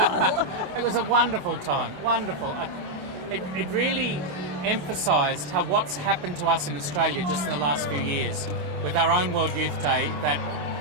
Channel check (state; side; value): late; left; 27 ms